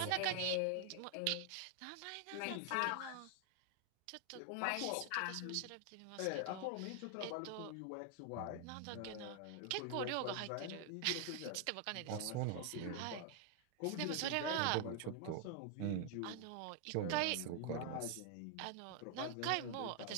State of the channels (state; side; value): different; both; correlation 0.00